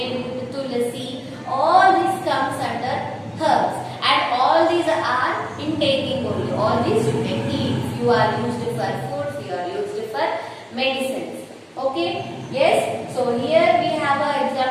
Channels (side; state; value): both; identical; correlation 1.00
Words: tulasi, all this comes under herbs, and all these are in taking only. All these you can eat. Few are used for food, few are used for medicines. Okay, yes, so here we have an